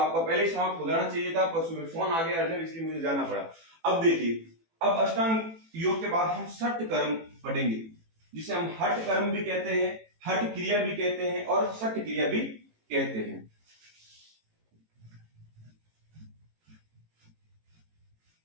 पहले ही समाप्त हो जाना चाहिए था, पर सुबह फोन आ गया अर्जेंट, इसलिए मुझे जाना पड़ा। अब देखिए, अब अष्टांग योग के बाद हम षट कर्म पढ़ेंगे, जिसे हम हठ कर्म भी कहते हैं, हठ क्रिया भी कहते हैं और षट क्रिया भी कहते हैं।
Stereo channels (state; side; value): late; left; 18 ms